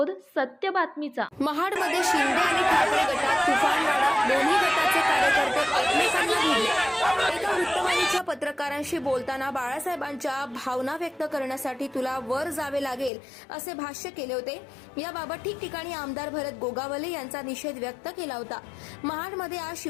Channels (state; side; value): drops out; right; at 13.1 s